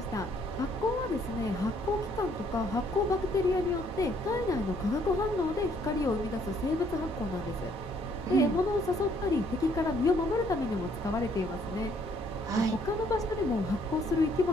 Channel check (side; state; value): both; normal; correlation 0.66